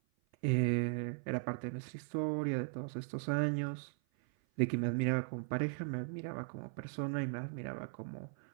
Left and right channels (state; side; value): silent; left; 52 dB below the other